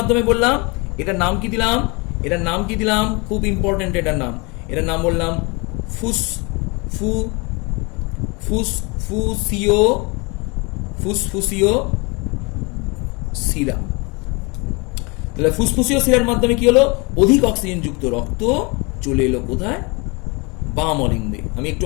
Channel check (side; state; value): right; quieter; 28.8 dB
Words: বললাম? এটার নাম কি দিলাম? এটার নাম কি দিলাম? খুব ইম্পর্টেন্ট এটার নাম বললাম ফুসফুসীয় শিরা। তাহলে ফুসফুসীয় শিরার মাধ্যমে কি হলো? অধিক অক্সিজেন যুক্ত রক্ত চলে এলো কোথায়? বাম অলিন্দে। আমি একটু